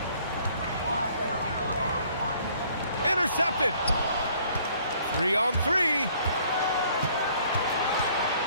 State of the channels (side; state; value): both; inverted; correlation -0.60